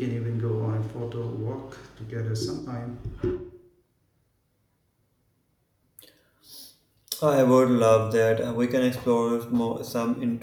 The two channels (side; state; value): both; identical; correlation 1.00